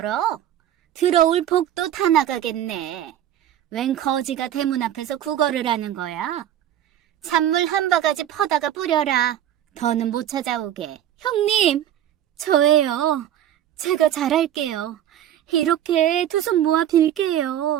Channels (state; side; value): quieter; left; 11.3 dB